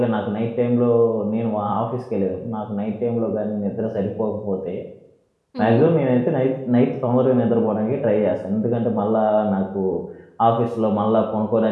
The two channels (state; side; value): identical; both; correlation 1.00